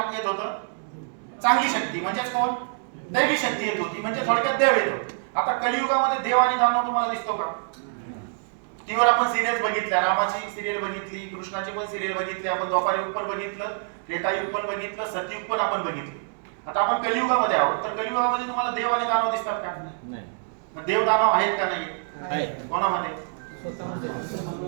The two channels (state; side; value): silent; left; 60 dB below the other